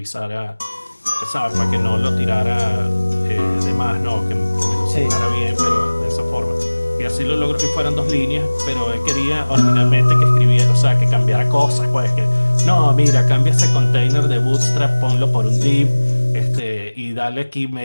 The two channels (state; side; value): inverted; both; correlation -1.00